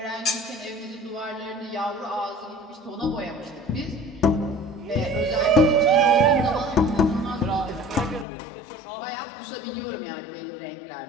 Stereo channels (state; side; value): drops out; right; at 8.2 s